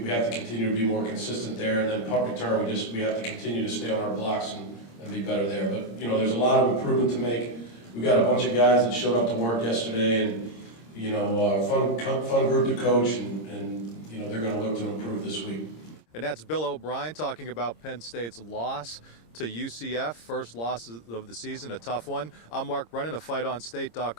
have to continue to be more consistent there. And then punt return, we have to continue to stay on our blocks and be better there. But there's a lot of improvement to make. We got a bunch of guys that showed up to work yesterday, and fun group to coach, and they're going to look to improve this week. And that's Bill O'Brien talking about Penn State's loss to UCF, first loss of the season, a tough one. I'm Mark Brennan of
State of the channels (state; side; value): late; right; 26 ms